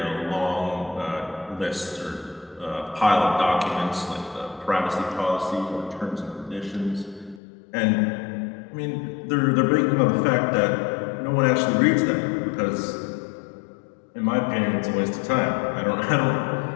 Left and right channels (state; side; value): drops out; right; at 7.4 s